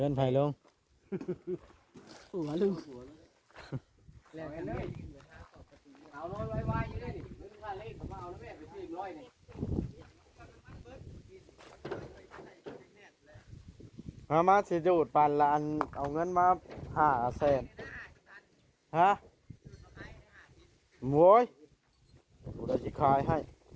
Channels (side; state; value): both; identical; correlation 1.00